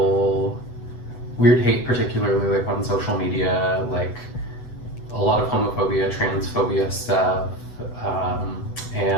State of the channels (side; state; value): right; late; 8.0 ms